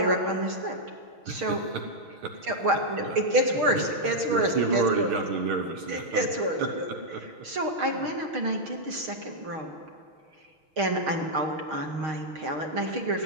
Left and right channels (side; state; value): left; late; 6.5 ms